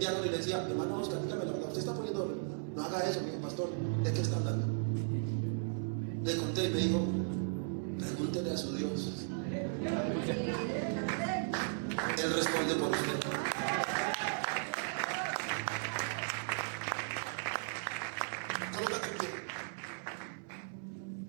y le decía: hermano Oscar, dígame la verdad, usted está poniendo oro. No haga eso, mi pastor. ¿De qué está hablando? Le conté y me dijo: pregúntele a su Dios. Él responde por usted.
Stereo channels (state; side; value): silent; left; 54 dB below the other